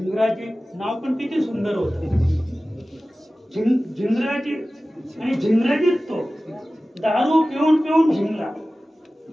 नाव पण किती सुंदर होतं, झिंगराजी. आणि झिंगराजीच तो दारू पिऊन पिऊन झिंगला,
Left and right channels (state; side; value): normal; both; correlation 0.96